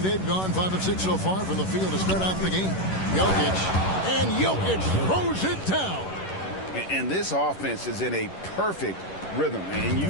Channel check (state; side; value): late; right; 11 ms